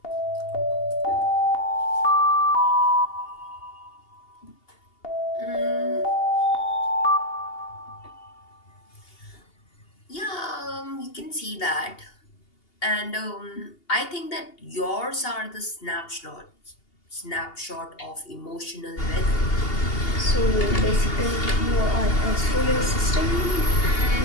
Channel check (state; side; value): late; right; 2.8 ms